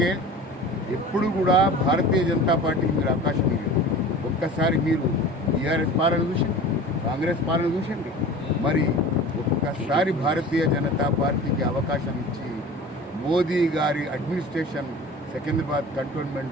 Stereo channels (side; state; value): both; normal; correlation 0.39